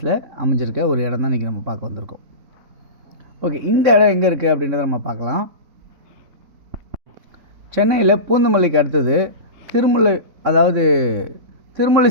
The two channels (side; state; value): left; late; 3.7 ms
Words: அமைஞ்சிருக்க ஒரு இடம் தான் இன்றைக்கி நம்ம பார்க்க வந்திருக்கோம். ஓகே, இந்த இடம் எங்கே இருக்குது அப்படின்றத நம்ம பார்க்கலாம். சென்னையில் பூந்தமல்லிக்கு அடுத்தது